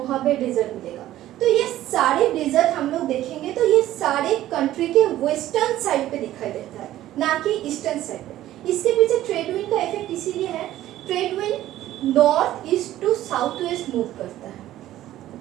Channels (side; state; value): left; quieter; 13.8 dB